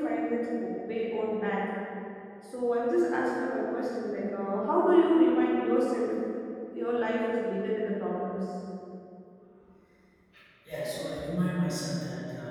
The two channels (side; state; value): both; identical; correlation 1.00